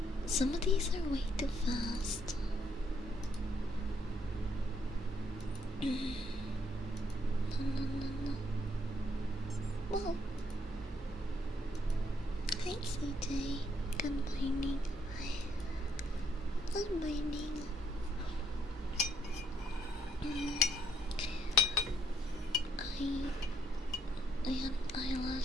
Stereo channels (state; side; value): normal; both; correlation 0.71